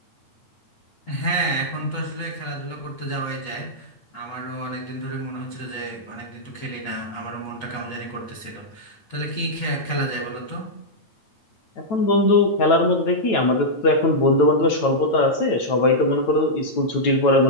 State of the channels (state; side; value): late; right; 9.1 ms